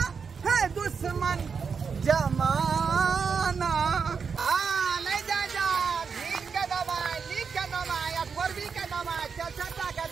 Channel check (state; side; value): quieter; left; 5.8 dB